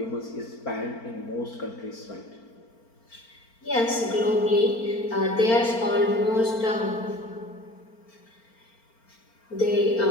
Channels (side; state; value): right; late; 4.4 ms